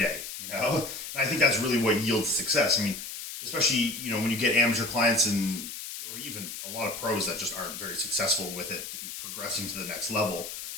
you know? And I think that's really what yields success. I mean, especially, you know, when you get amateur clients and or even a lot of pros that just aren't very successful with it, progressing to the next level,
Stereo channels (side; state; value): left; noise; hiss, 8 dB below the sound